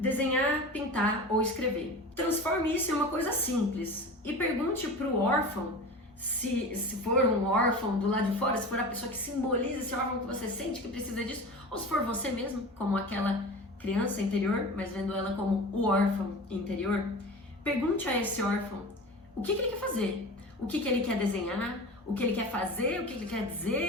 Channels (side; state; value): both; normal; correlation 0.33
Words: pintar ou escrever. Transforme isso em uma coisa simples e pergunte para o órfão, se for um órfão do lado de fora, se for a pessoa que simboliza esse órfão que você sente que precisa disso, ou se for você mesmo, como aquela criança interior, mas vendo ela como o órfão interior, pergunte a esse órfão o que ele quer fazer, o que ele quer desenhar, o que ele quer fazer, o que ele quer